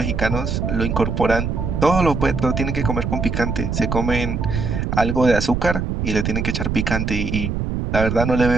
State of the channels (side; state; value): right; noise; rumble, 1 dB below the sound